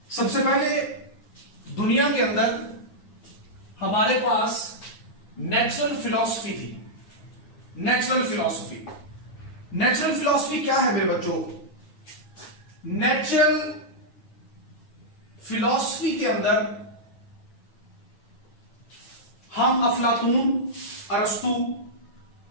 सबसे पहले दुनिया के अंदर हमारे पास नेचुरल फिलॉसफी थी। नेचुरल फिलॉसफी क्या है मेरे बच्चों? नेचुरल फिलॉसफी के अंदर हम अफलातून, अरस्तु,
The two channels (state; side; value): late; right; 9.6 ms